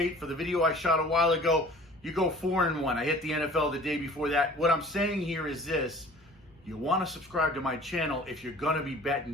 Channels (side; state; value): both; normal; correlation 0.47